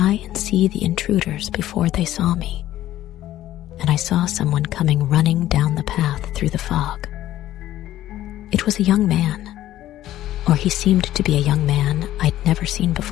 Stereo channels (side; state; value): right; quieter; 13.7 dB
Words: and see the intruders before they saw me. And I saw someone coming running down the path through the fog. It was a young man, or he seemed to be a young man I'd never seen